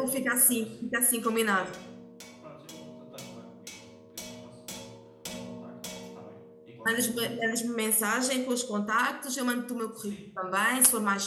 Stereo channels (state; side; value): identical; both; correlation 1.00